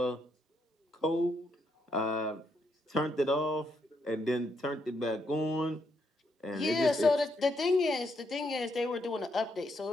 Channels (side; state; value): both; normal; correlation 0.77